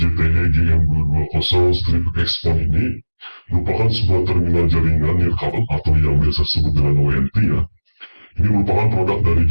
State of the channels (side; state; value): both; inverted; correlation -1.00